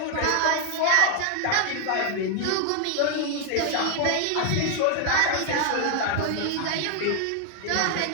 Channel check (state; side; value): different; both; correlation 0.01